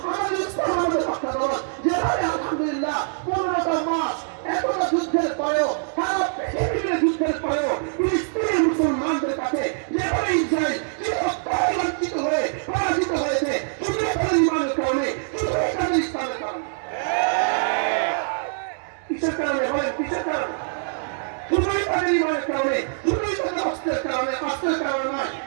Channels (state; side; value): silent; left; digital silence